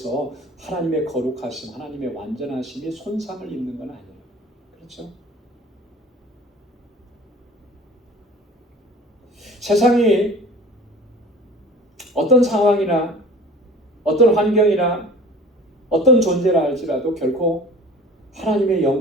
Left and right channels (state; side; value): normal; both; correlation 0.44